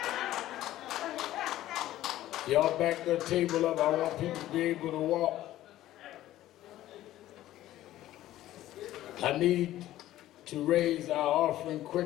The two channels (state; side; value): quieter; right; 14.3 dB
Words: Y'all back the table up. I want people to be able to walk. I need to raise our offering